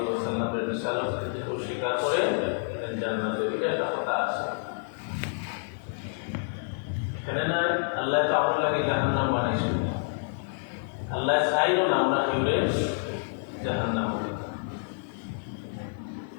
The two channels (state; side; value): silent; right; digital silence